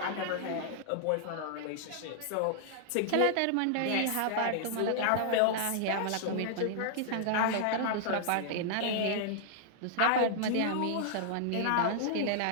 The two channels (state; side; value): different; both; correlation -0.01